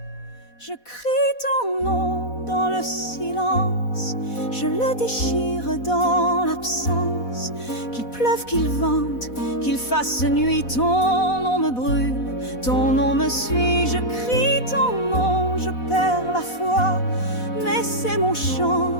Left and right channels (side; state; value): right; late; 4.1 ms